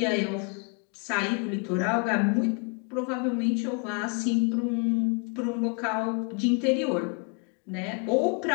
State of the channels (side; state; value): right; quieter; 36.8 dB